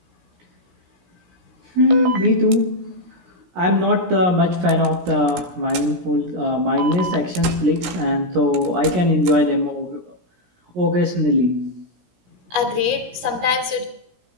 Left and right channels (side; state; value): left; late; 17 ms